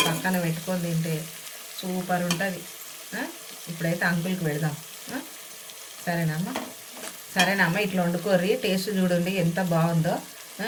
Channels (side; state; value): both; identical; correlation 1.00